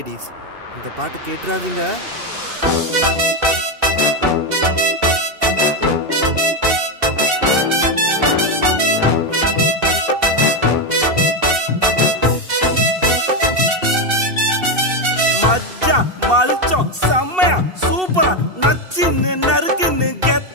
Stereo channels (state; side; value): late; left; 2.7 ms